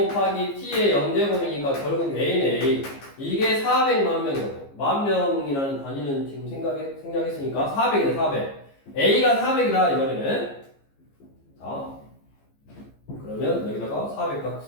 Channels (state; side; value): late; right; 15 ms